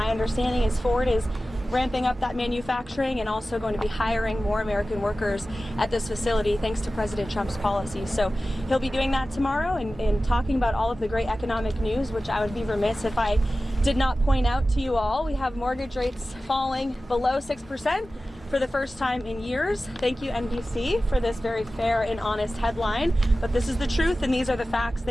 understanding is Ford is ramping up that manufacturing and also going to be hiring more American workers at this facility thanks to President Trump's policies. So he'll be doing that tomorrow and talking about all of the great economic news, which I would be remiss if I did not point out to you all. We have mortgage rates falling below 6% for the first time in years. Thank you, NBC, for this very fair and honest headline. But this is the truth, and these are the facts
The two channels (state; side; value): normal; both; correlation 0.95